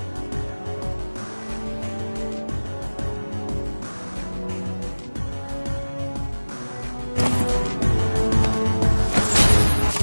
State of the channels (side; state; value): both; inverted; correlation -1.00